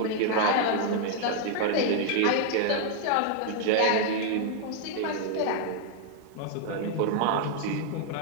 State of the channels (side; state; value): both; different; correlation 0.00